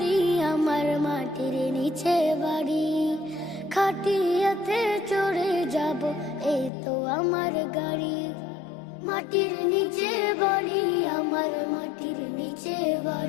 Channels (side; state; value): right; drops out; at 6.7 s